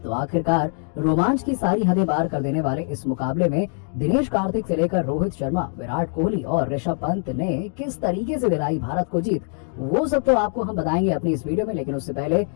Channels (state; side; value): silent; right; 55 dB below the other